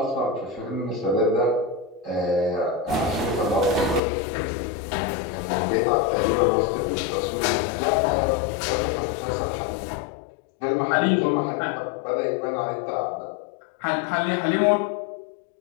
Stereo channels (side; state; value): right; drops out; at 4.0 s